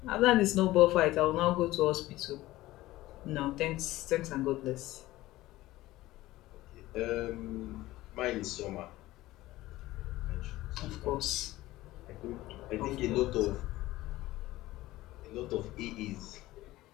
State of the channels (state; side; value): quieter; right; 17.1 dB